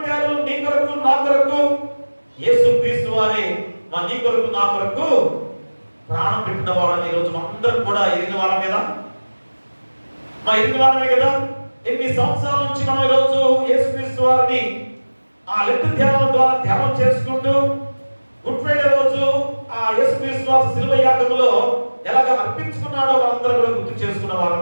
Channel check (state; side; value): inverted; both; correlation -1.00